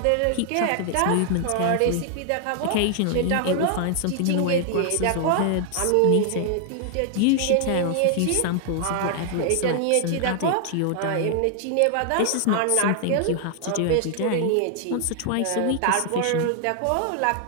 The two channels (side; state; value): both; different; correlation 0.00